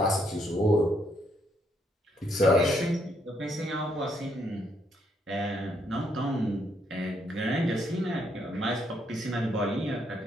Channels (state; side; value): normal; both; correlation 0.73